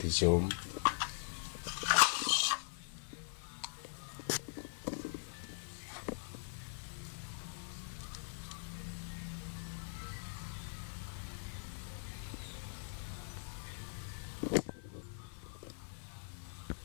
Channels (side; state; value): right; silent; 50 dB below the other